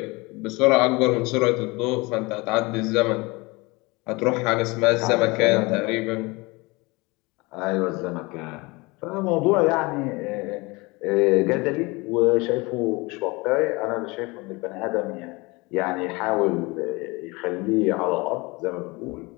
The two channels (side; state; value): right; quieter; 24.9 dB